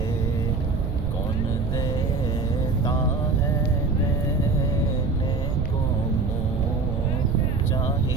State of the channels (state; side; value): noise; right; rumble, 1 dB below the sound